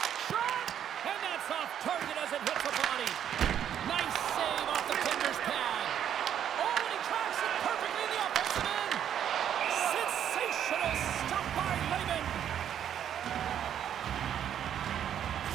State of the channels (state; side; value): quieter; left; 9.6 dB